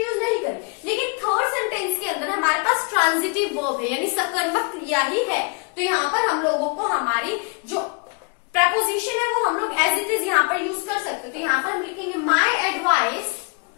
नहीं करी। लेकिन थर्ड सेंटेंस के अंदर हमारे पास ट्रांजिटिव वर्ब है, यानी सकर्मक क्रिया ही है, तो यहाँ पर हम लोगों को हमारी जो प्रपोजिशन है वो हम लोग एज इट इज यहाँ पर यूज कर सकते। तो यहाँ पर हम लिखेंगे माई एडवाइस,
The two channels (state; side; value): quieter; right; 34.4 dB